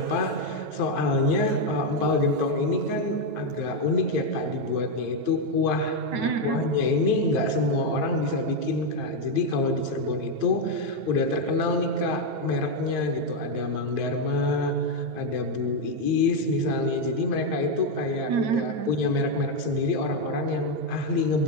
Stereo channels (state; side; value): late; left; 9.0 ms